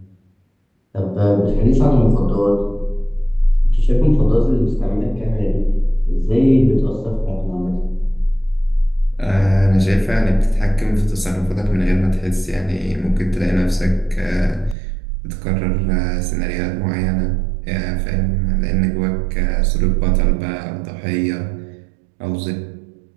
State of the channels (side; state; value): left; drops out; at 14.8 s